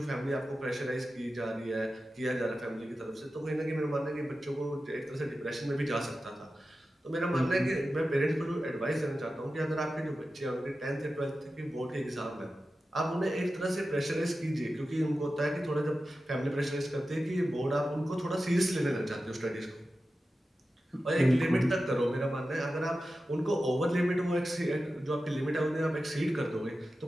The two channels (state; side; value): normal; both; correlation 0.93